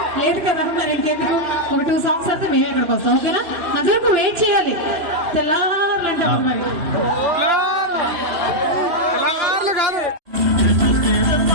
లేదు కదా. మరి ఇంకెందుకు ఒక 2 songs అయితే మేము అక్కడికి వస్తాం. ఓకేనా? అంతవరకు వెయిట్ చేయాలి. తెల్లారులంటే మరి తెలంగాణలో కాదు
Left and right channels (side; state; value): left; late; 2.9 ms